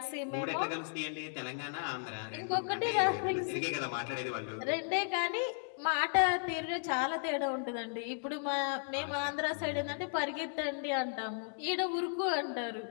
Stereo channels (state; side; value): silent; right; digital silence